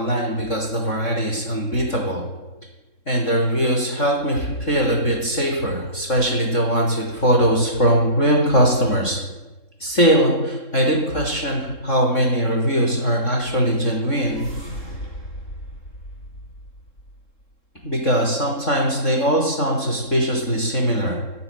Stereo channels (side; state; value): right; late; 3.7 ms